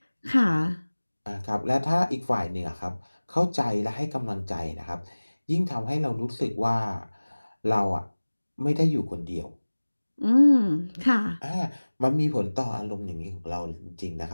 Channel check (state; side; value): inverted; both; correlation -1.00